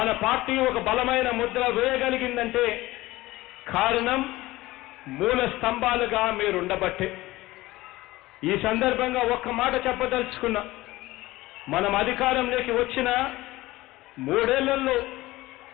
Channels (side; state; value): right; quieter; 18.5 dB